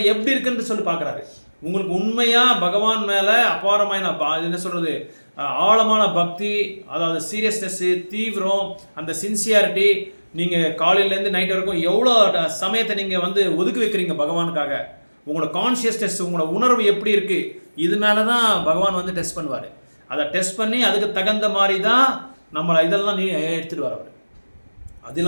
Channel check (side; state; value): both; inverted; correlation -1.00